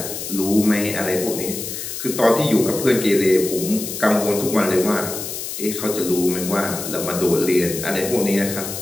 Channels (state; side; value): noise; left; hiss, 7 dB below the sound